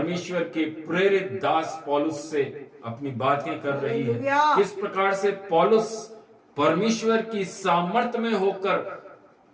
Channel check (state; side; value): identical; both; correlation 1.00